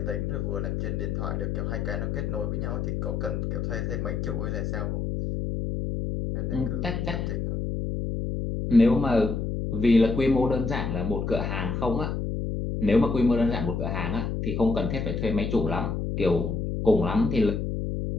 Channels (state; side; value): noise; left; hum, 2 dB below the sound